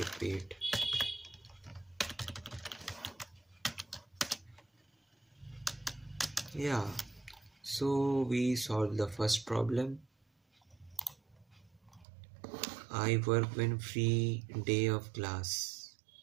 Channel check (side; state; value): left; drops out; at 12.1 s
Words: be it. Yeah, so we solved the first problem. I work when free day of class.